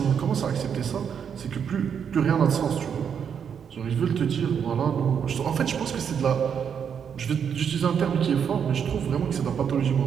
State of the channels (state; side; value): quieter; left; 7.5 dB